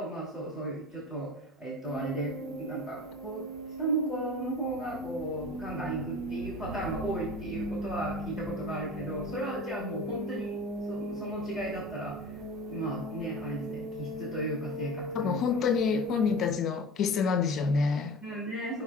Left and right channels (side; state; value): both; normal; correlation 0.35